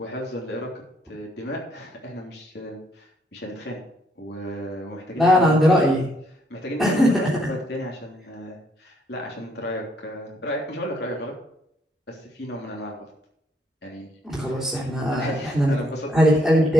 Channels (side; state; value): both; normal; correlation 0.71